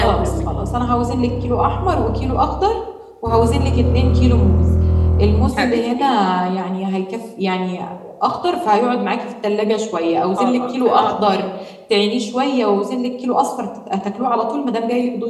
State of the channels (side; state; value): both; identical; correlation 1.00